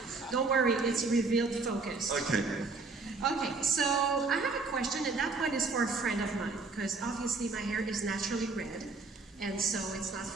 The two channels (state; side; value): quieter; left; 4.0 dB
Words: Don't worry, it's revealed focus. Okay. Okay, so I have a question, and that one is for a friend of mine, because obviously my hair is naturally red, and so it's not